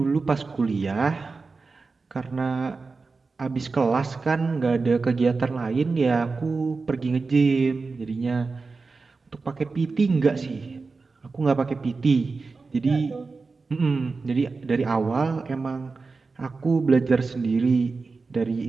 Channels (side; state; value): left; quieter; 4.2 dB